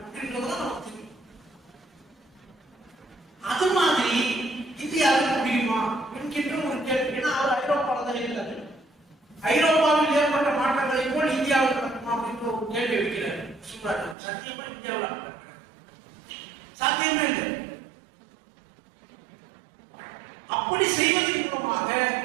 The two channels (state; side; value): drops out; left; at 14.2 s